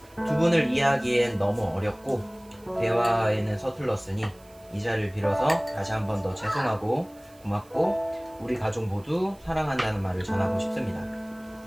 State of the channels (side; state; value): right; noise; hiss, 27 dB below the sound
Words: 두 분을 이해하기엔 너무 어렵고 대화에는 서툴렀으니 이 자리를 빌어서 다시 한 번 더 죄송하고 고맙고 우리 가족 모두 사랑한다는 말을 전하고 싶습니다.